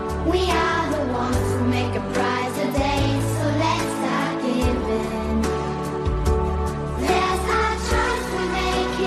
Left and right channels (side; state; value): both; identical; correlation 1.00